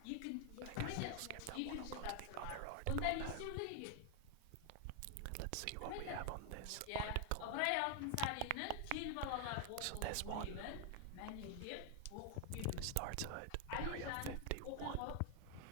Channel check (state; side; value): different; both; correlation 0.00